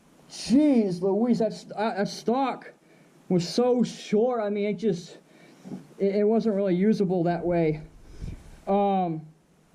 jeez Louise, that stock was so short. I mean, it wasn't really usable that way. But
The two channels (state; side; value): identical; both; correlation 1.00